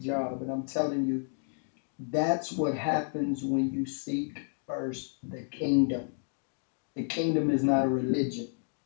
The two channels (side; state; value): right; silent; 57 dB below the other